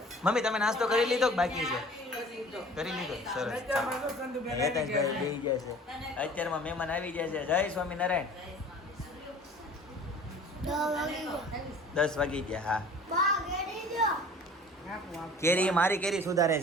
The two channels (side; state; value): both; normal; correlation 0.47